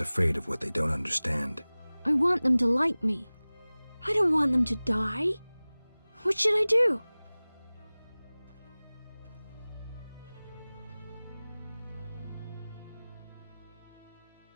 of what they don't understand. I want them to like me. I don't want them to die. What should I do?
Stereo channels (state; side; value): inverted; both; correlation -0.99